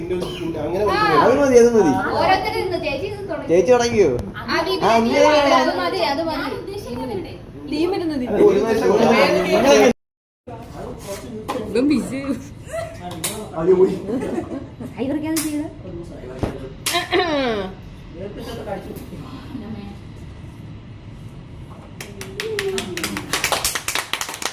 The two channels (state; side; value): identical; both; correlation 1.00